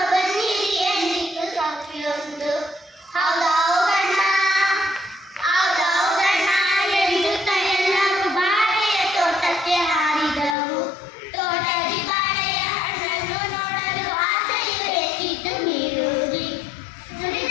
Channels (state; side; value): drops out; right; at 10.6 s